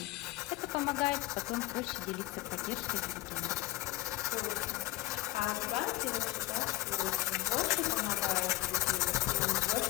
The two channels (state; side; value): quieter; right; 17.3 dB